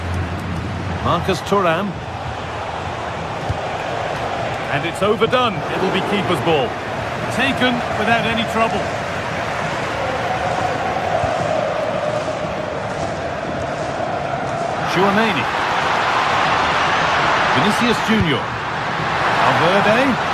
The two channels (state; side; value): identical; both; correlation 1.00